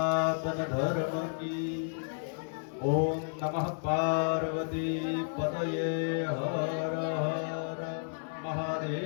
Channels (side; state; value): right; silent; digital silence